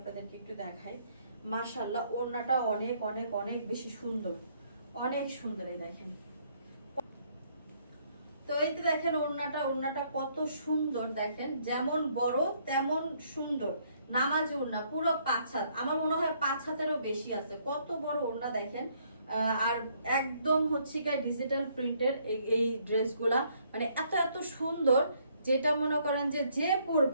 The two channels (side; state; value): both; inverted; correlation -0.68